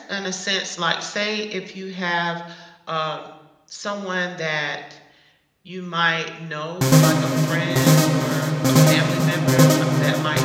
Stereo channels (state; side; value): identical; both; correlation 1.00